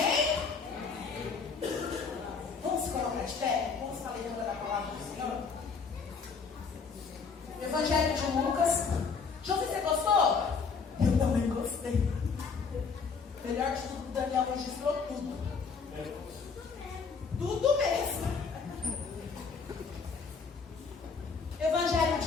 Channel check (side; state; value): right; quieter; 5.2 dB